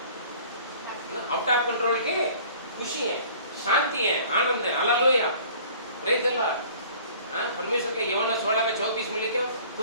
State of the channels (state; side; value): inverted; both; correlation -0.50